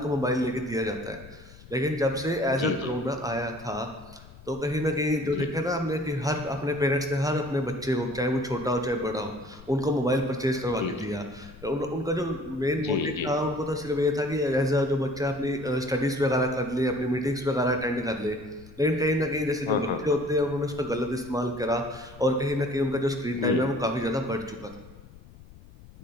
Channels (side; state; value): left; noise; rumble, 20 dB below the sound